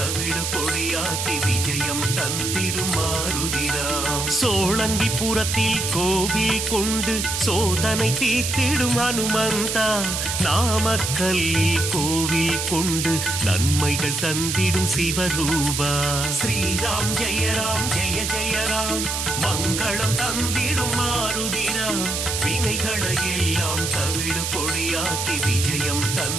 பொடியாக்கி விஜயம் தந்திடும் மாருதிராம். சோழங்கிபுரத்தில் கோவில் கொண்டு சோதனை தீர்த்திடும் ஹனுமந்தா. நாமக்கல்லில் கோவில் கொண்டு நன்மைகள் தந்திடும் சிவரூபா. ஸ்ரீராம் ஜெய ஜெய ராம் மங்களம் தந்திடும் மாருதிராம். வினைகளை எல்லாம் தவிடு பொடியாக்கி விஜயம்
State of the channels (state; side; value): noise; right; hiss, 2 dB below the sound